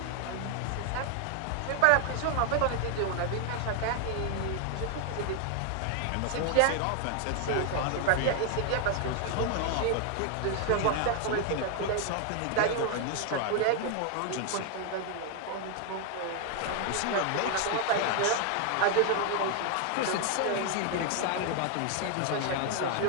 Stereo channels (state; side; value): different; both; correlation 0.00